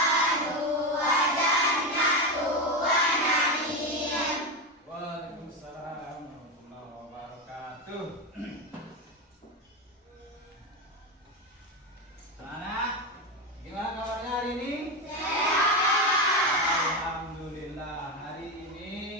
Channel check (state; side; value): normal; both; correlation 0.15